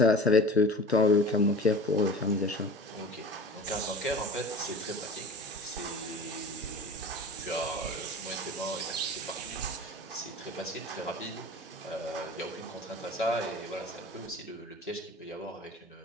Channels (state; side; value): normal; both; correlation 0.38